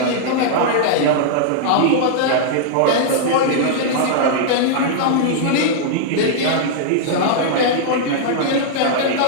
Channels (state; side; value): different; both; correlation -0.01